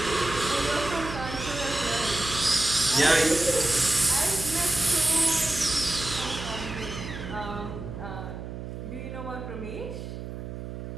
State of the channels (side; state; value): right; noise; hum, 9 dB below the sound